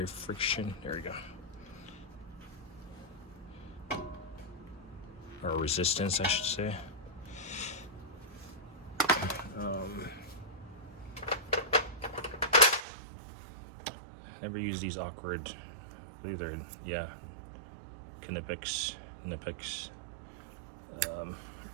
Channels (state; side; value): drops out; left; at 12.9 s